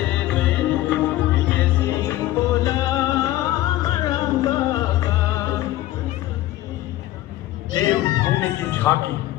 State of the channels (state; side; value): quieter; right; 15.1 dB